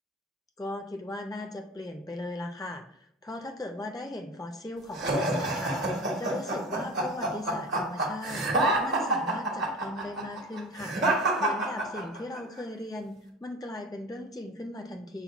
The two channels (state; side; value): normal; both; correlation 0.36